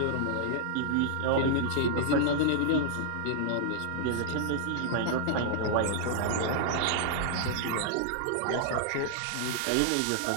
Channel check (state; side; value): different; both; correlation -0.01